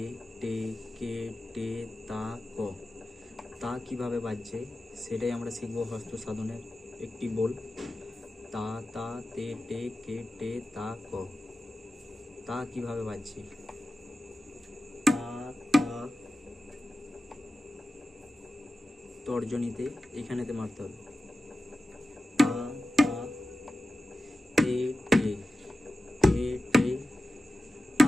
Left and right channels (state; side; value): normal; both; correlation 0.93